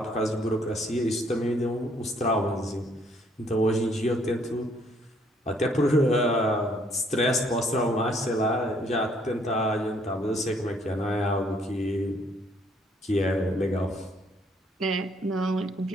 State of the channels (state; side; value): normal; both; correlation 0.66